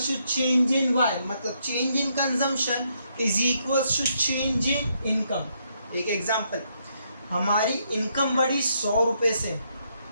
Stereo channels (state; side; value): inverted; both; correlation -0.75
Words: change in Y, मतलब change in consumption is equal to change in income. एक एग्जांपल, हमारी इनकम बढ़ी 100 रुपये से,